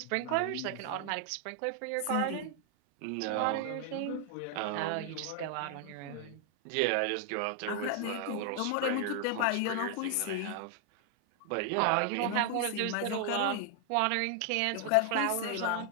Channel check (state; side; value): different; both; correlation 0.00